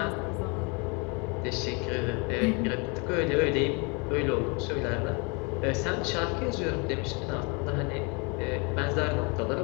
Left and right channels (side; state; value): right; quieter; 31.4 dB